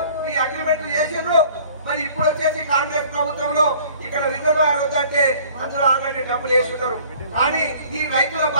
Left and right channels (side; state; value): both; inverted; correlation -0.52